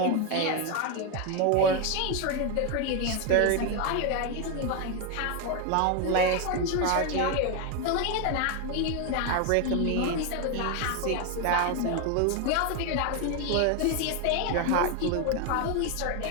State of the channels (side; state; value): both; different; correlation 0.01